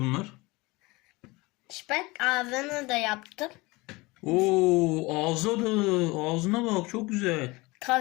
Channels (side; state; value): right; quieter; 23.1 dB